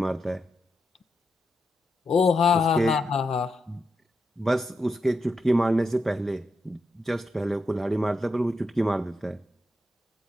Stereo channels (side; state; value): both; normal; correlation 0.85